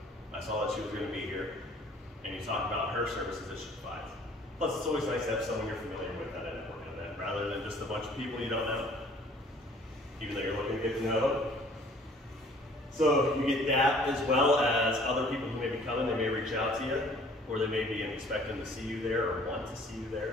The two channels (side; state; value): both; normal; correlation 0.54